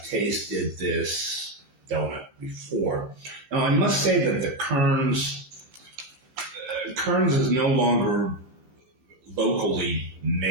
tasted this donut before. Now, I must say that the Kearns is no longer locally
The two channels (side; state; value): left; late; 16 ms